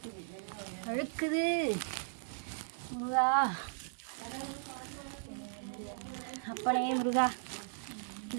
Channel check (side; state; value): left; silent; 53 dB below the other